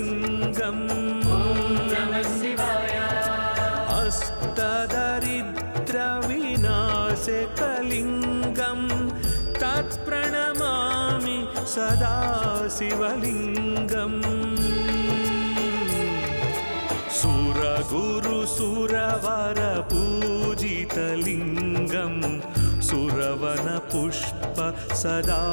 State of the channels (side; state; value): both; inverted; correlation -1.00